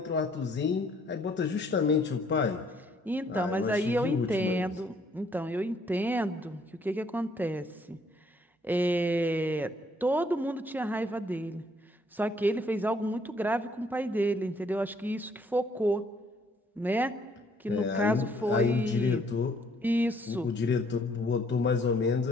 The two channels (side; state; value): both; normal; correlation 0.65